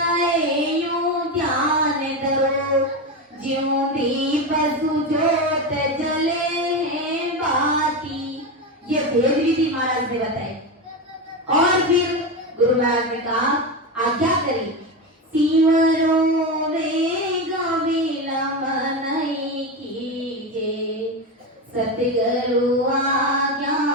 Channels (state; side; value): normal; both; correlation 0.16